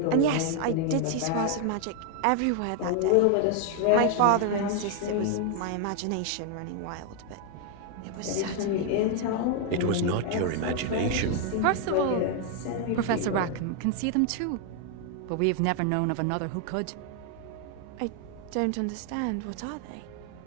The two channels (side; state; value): both; different; correlation 0.00